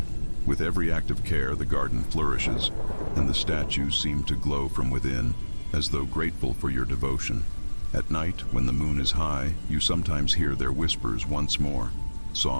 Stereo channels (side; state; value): both; inverted; correlation -1.00